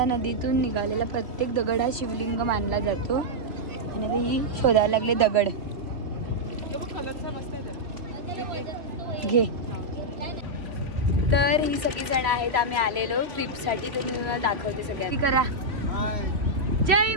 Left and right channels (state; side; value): late; left; 3.0 ms